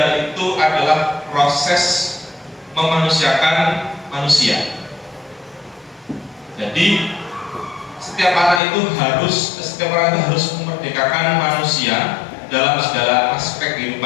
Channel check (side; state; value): right; drops out; at 8.6 s